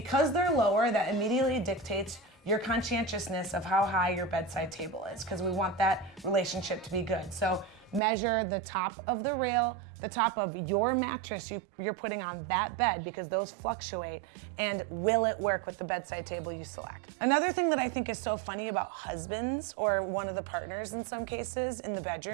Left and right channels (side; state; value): left; drops out; at 8.0 s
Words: they're lower, that immediately dictates your conscientiousness of how high your bedside table is, because we want that relationship to be good. So measure the top of the rail, the top of your mattress you're putting on that bed, because those fluctuate, and will it work with the bedside table you select? Another thing that I think is so funny about husbands, or one of the partners in some cases in the